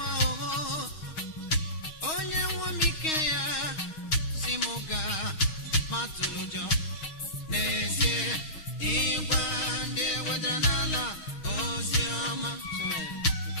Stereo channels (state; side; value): late; right; 6.4 ms